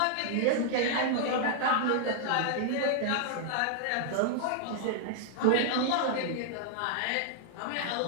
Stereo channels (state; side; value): different; both; correlation -0.01